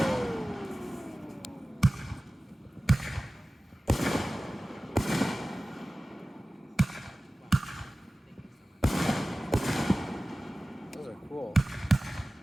Those are cool.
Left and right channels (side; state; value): both; normal; correlation 0.97